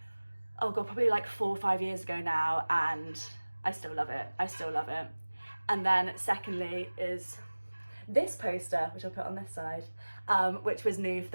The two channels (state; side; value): inverted; both; correlation -1.00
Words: oh god, probably like 4 or 5 years ago now, and I still love it. I still love it. And then secondly is this poster, which I'll put on this side, which was new for